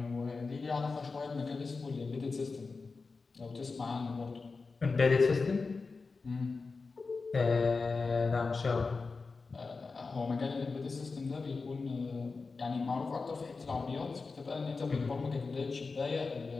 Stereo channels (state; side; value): quieter; right; 4.3 dB